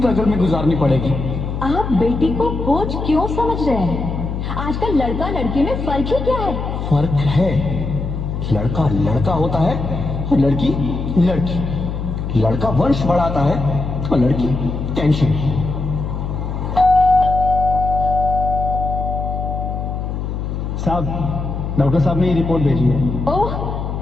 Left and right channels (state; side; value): noise; left; hum, 4 dB below the sound